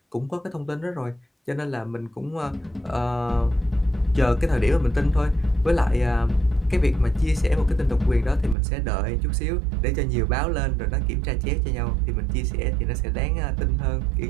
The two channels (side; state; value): left; drops out; at 8.6 s